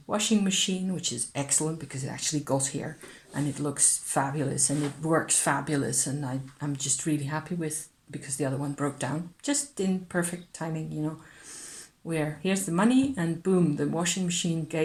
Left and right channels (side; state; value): both; identical; correlation 1.00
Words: washing machine, which is excellent because it actually got here and it looks fabulous and it works fabulous, and I'm just really happy with, because the other one broke down just in perfect timing, you know, where here's the money and boom, the washing machine